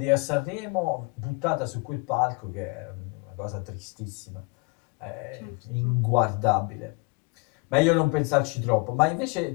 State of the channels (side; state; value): right; quieter; 30.7 dB